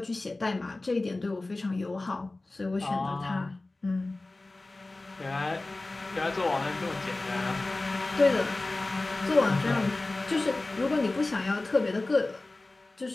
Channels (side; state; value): right; quieter; 3.0 dB